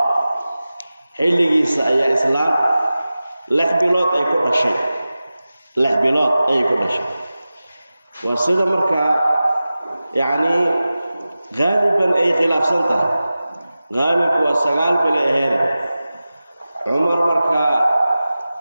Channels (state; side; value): inverted; both; correlation -0.96